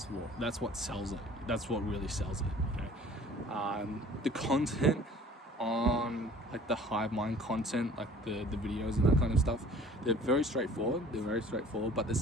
what sells it. That's what really sells it, you know. The content on like the Hivemind content, like the videos and that kind of stuff, they're very straightforward, but there's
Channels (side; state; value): both; normal; correlation 0.49